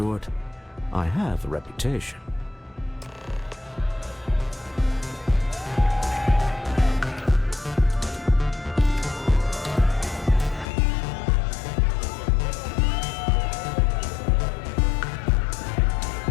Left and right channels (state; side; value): drops out; right; at 10.7 s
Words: I have a reputation.